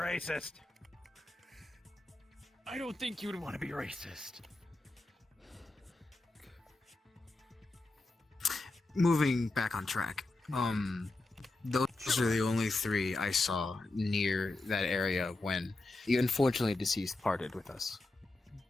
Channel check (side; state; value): right; quieter; 3.0 dB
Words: I don't think you would want to be racist. Moving back on track. Those are the only three I saw near that area when the unfortunately deceased parted with us.